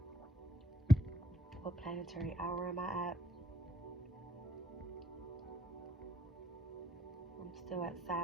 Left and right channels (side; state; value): both; normal; correlation 0.70